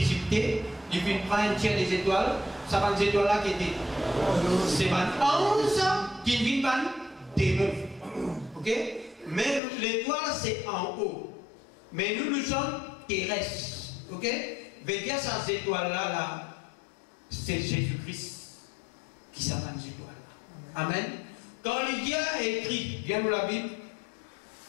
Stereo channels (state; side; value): drops out; right; at 9.6 s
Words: il vient prendre un tiers des étoiles, ça va des étoiles là qui étaient. C'est 11 qui viennent par démons. Ok? Mais l'étoile c'est en haut. Mais nous sommes terrestres. Ok? Veillez à ces étoiles-là, là, c'est Jésus-Christ qui s'appelle les étoiles. Amen. Quand Lydia a écrit, viens nous la Bible,